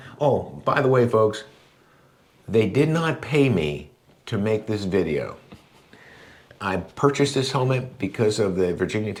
Oh, by the way, folks, they did not pay me to make this video. I purchased this helmet because of the Virginia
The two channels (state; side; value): identical; both; correlation 1.00